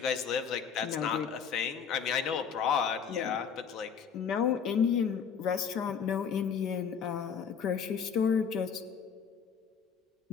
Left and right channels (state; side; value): quieter; right; 6.9 dB